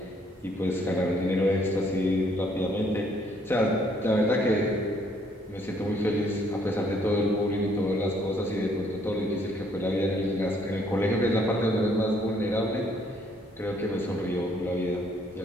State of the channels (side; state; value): both; normal; correlation 0.66